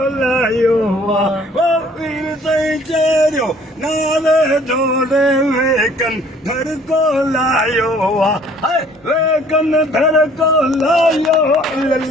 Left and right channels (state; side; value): normal; both; correlation 0.56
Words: लायो वो वीर सही चेरियो नाले जोड़े वेकन धर को लायो वेकन धर को लायो